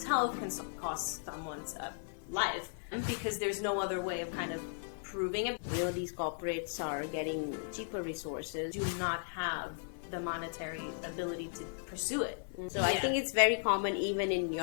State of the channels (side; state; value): right; silent; digital silence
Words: health, can cost someone's life, because there's no other way of kind of proving it. You know, these corporates are getting cheaper resources. Do not have the monetary ability to pursue it. So I think it's very common even in